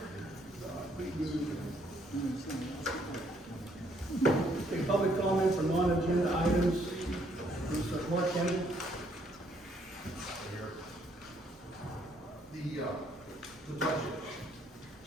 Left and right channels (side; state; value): both; normal; correlation 0.68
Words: Okay, public comment for non-agenda items. Mr. Mark Kennedy. The budget.